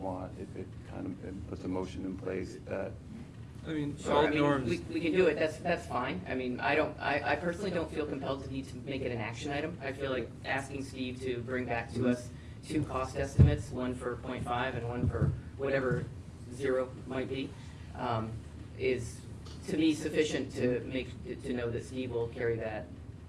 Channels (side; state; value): both; identical; correlation 1.00